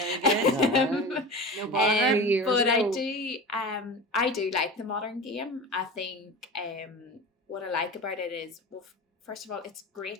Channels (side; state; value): both; normal; correlation 0.31